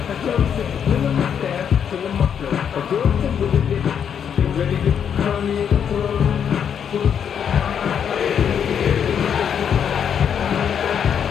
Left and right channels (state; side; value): quieter; right; 8.0 dB